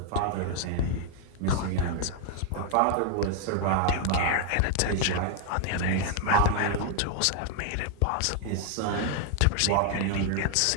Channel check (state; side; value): different; both; correlation 0.00